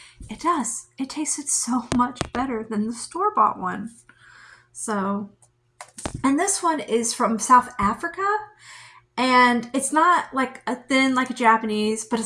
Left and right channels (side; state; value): both; identical; correlation 1.00